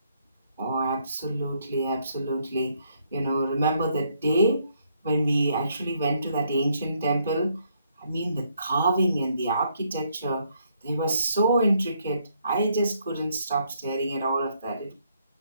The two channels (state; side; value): inverted; both; correlation -0.72